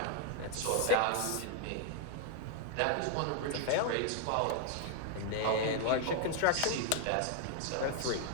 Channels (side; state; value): both; different; correlation 0.00